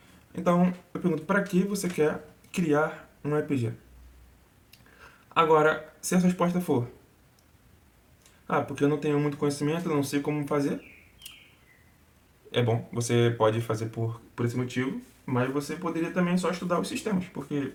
Então, eu pergunto, pra que você quer criar um RPG? Agora, se a resposta for, porque eu não tenho muito conhecimento, não sei como fazer, é bom, você pode fazer por esse motivo, mas você poderia também só estudar os sistemas, porque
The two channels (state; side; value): identical; both; correlation 1.00